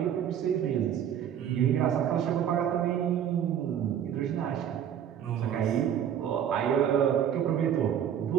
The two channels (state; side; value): quieter; left; 9.4 dB